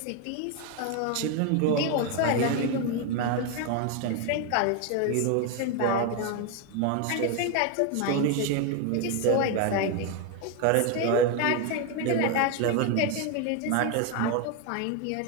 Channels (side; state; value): both; different; correlation 0.02